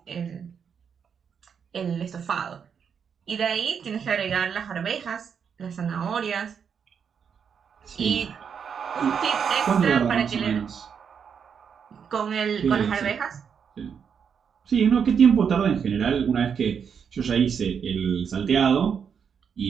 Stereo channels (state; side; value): quieter; left; 7.0 dB